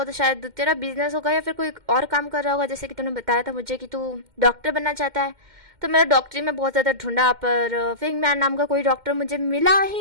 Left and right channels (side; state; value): left; late; 2.1 ms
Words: तो शायद तेरा बिजनेस होगा या फिर कोई और काम कर रहा होगा, जैसे कि तूने बताया था मुझे कि तू डॉक्टर बनना चाहता है। तो मैंने डॉक्टरी में बहुत ज़्यादा ढूंढा पर फिंग मैन नाम का कोई डॉक्टर मुझे मिला